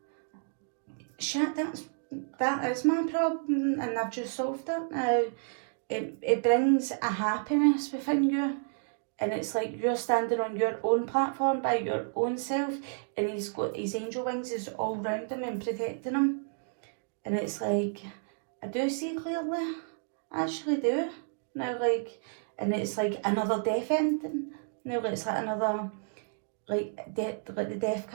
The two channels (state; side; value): silent; left; digital silence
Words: shit, that is my problem and I've just solved it now. It brings a happiness within you, and it's like you're standing on your own platform by your own self, and he's got his angel wings is all around him and protecting him. And it's like, I do see clearly, I actually do. Now like, and it's like another death ending. Now it's like another, like the death